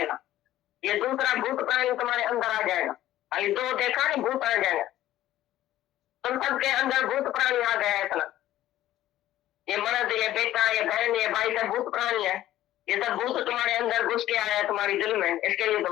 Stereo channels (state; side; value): quieter; right; 13.9 dB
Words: ये दूसरा भूत प्राणी तुम्हारे अंदर आ जाएगा। अभी दो देखा नहीं, भूत आ जाएगा। तुम सबके अंदर भूत प्राणी आ गया है इतना। ये मर्द, ये बेटा, ये बहन, ये भाई सब भूत प्राणी है। ये सब भूत तुम्हारे अंदर घुस के आया है तुम्हारी दिल में, इसके लिए